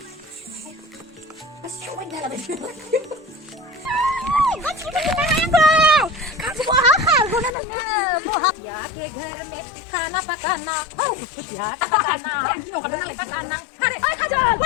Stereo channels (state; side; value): drops out; right; at 7.6 s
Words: nó siêu anh đây là vậy 같이 먹는 거 같이 뭐 하고 그러는 거 뭐 야, 걔네 하나 바까나 야, 바까나 이거 가는 거 바까나 아, 가자.